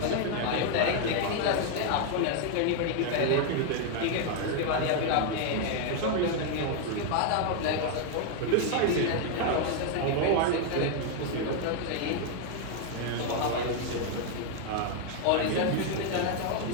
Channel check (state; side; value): different; both; correlation 0.00